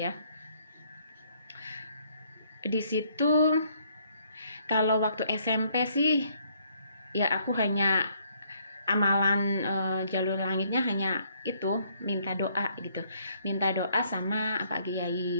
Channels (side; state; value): both; inverted; correlation -0.67